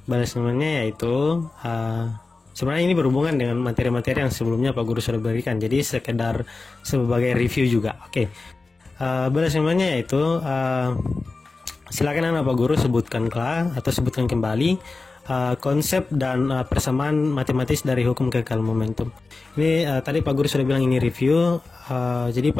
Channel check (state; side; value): quieter; right; 3.7 dB